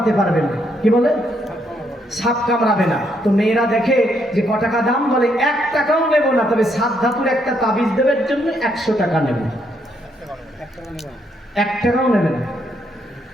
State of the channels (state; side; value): normal; both; correlation 0.74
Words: পারবে না। কি বলে? সাপ কামড়াবে না। তো মেয়েরা দেখে যে ক টাকা দাম, বলে 1 টাকাও নেব না, তবে 7 ধাতুর একটা তাবিজ দেবের জন্য 100 টাকা নেব। 1 টাকাও নেবে না।